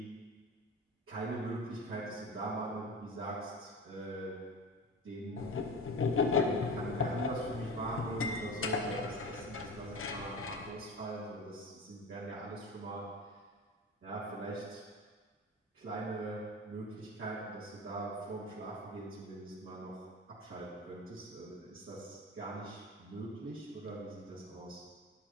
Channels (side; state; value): both; normal; correlation 0.31